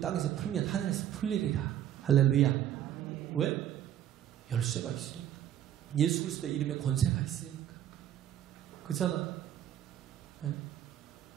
풀면 하늘에서 풀리리라. 할렐루야. 왜? 열쇠가 있으니까. 예수 그리스도의 이름에 권세가 있으니까. 그잖아.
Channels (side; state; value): left; quieter; 10.9 dB